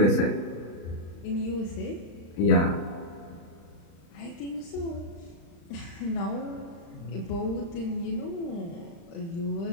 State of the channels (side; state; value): right; late; 35 ms